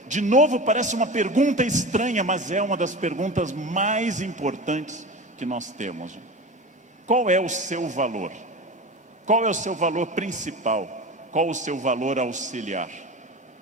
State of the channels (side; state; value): both; normal; correlation 0.29